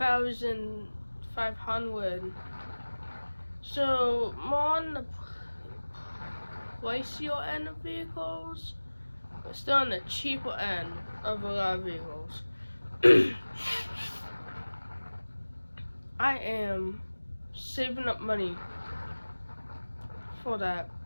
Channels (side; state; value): both; inverted; correlation -1.00